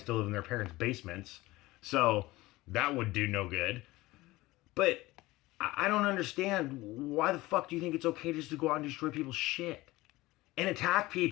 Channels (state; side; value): quieter; right; 19.3 dB